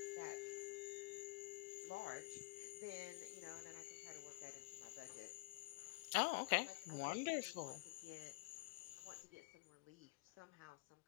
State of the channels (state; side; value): quieter; right; 23.2 dB